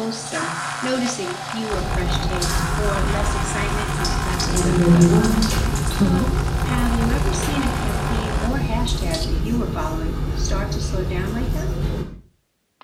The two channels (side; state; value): both; identical; correlation 1.00